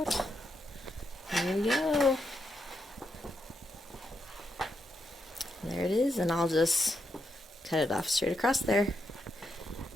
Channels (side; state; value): both; normal; correlation 0.82